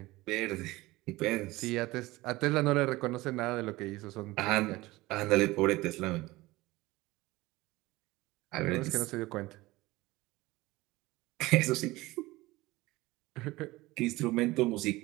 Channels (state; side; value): quieter; left; 19.8 dB